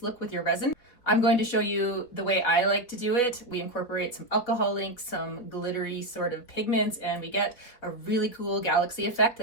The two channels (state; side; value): late; right; 4.2 ms